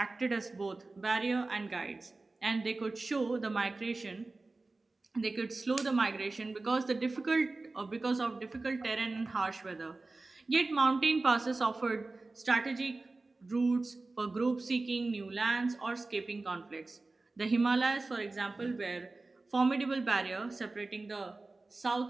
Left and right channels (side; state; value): left; quieter; 3.4 dB